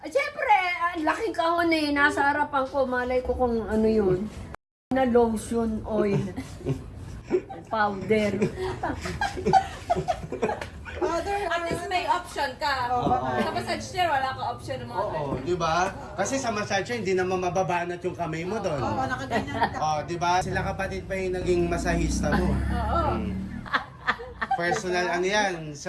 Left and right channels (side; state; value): both; identical; correlation 1.00